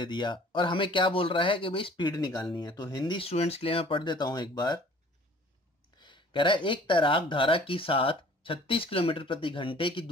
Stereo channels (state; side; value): normal; both; correlation 0.51